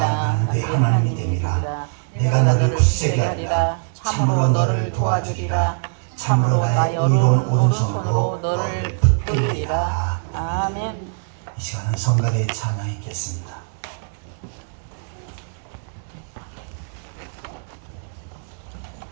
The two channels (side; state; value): left; silent; 64 dB below the other